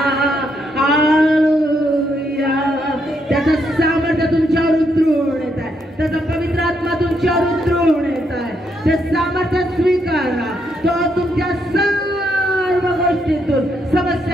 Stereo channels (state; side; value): normal; both; correlation 0.77